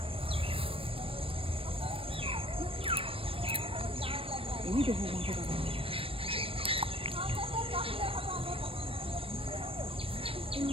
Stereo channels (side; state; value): left; late; 0.27 ms